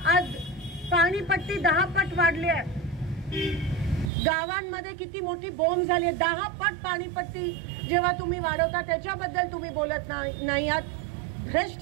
आज पाणीपट्टी 10 पट वाढली आहे, गावांमध्ये किती मोठी बोंब झाली आहे। 10 पट पाणीपट्टी जेव्हा तुम्ही वाढवता त्याच्याबद्दल तुम्ही बोलत नाही आहात।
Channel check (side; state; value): left; drops out; at 4.1 s